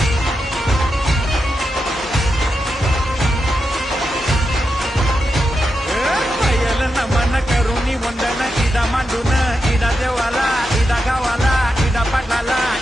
नमन करुणी वंदन इडा मांडून इडा देवाला इडा गावाला इडा पाटलाला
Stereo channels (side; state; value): both; normal; correlation 0.87